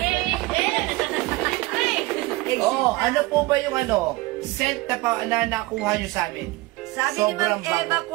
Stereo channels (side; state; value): left; quieter; 20.8 dB